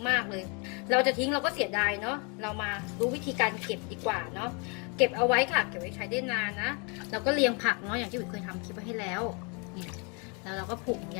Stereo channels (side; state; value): right; quieter; 33.9 dB